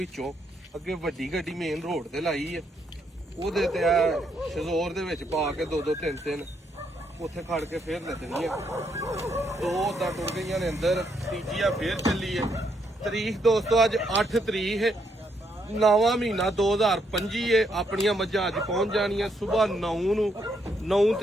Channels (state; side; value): normal; both; correlation 0.75